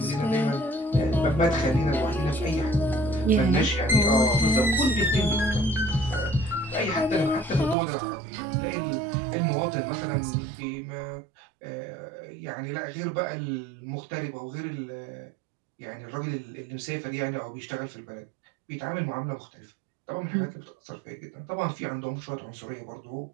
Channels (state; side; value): drops out; left; at 7.8 s